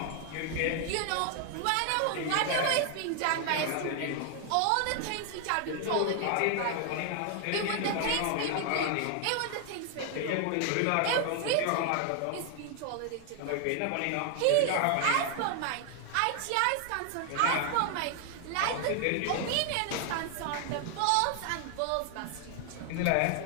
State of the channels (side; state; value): both; different; correlation 0.00